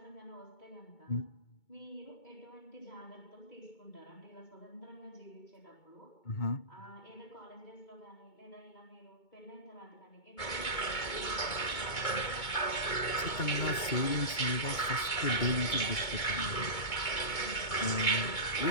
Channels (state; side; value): late; right; 2.2 ms